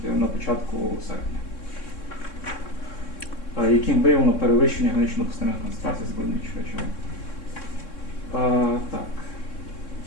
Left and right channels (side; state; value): right; late; 3.6 ms